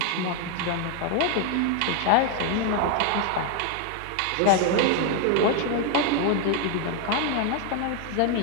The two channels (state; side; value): different; both; correlation 0.01